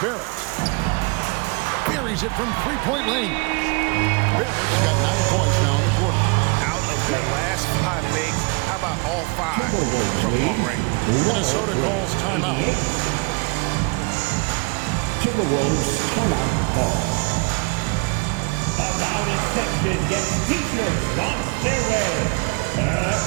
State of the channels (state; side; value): quieter; left; 29.4 dB